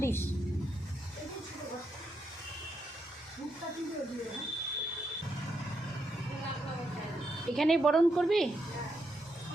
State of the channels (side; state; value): both; normal; correlation 0.81